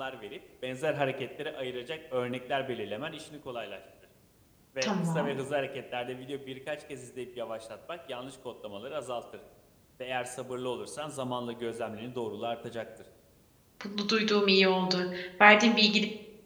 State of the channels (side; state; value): both; identical; correlation 1.00